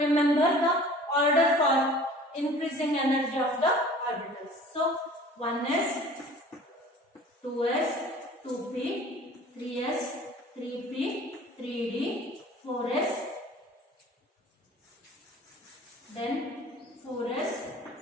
remember the order for increasing energy of the orbitals. So 1s, 2s, 2p, 3s, 3p, 3d, 4s, then 4s,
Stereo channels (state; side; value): normal; both; correlation 0.46